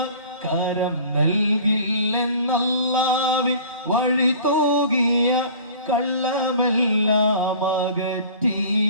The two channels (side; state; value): both; inverted; correlation -0.45